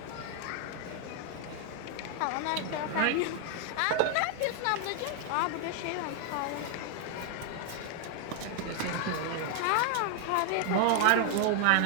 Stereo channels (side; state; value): both; different; correlation 0.00